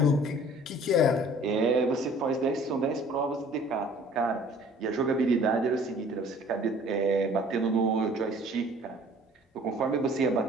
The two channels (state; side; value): normal; both; correlation 0.52